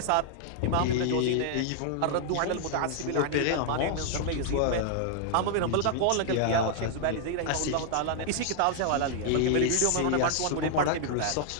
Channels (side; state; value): both; different; correlation 0.00